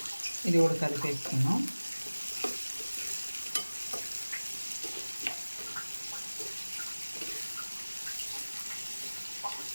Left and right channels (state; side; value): inverted; both; correlation -1.00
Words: ఇది కూడా కలిపేసుకున్నాం.